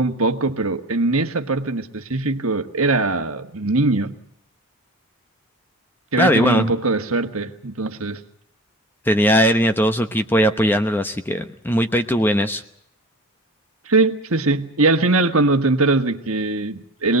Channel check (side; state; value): both; normal; correlation 0.34